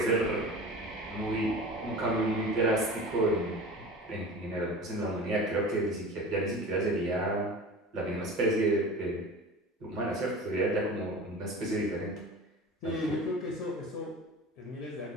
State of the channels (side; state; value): both; normal; correlation 0.36